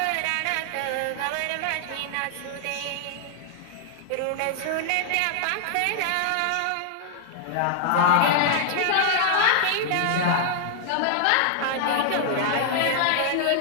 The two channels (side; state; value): both; different; correlation -0.01